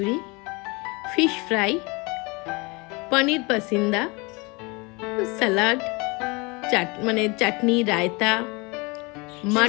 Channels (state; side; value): quieter; right; 27.3 dB